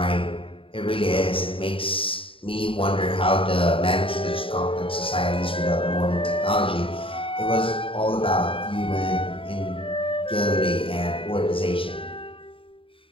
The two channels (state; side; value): late; right; 0.26 ms